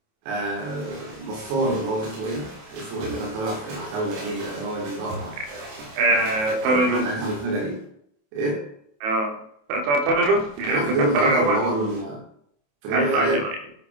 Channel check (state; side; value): late; left; 28 ms